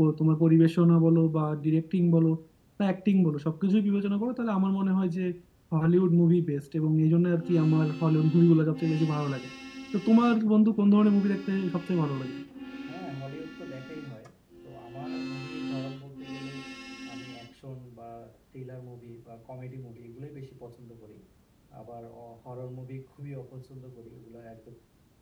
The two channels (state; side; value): identical; both; correlation 1.00